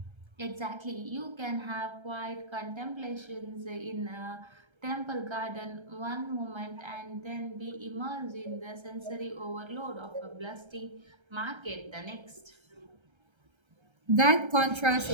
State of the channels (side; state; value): left; late; 1.3 ms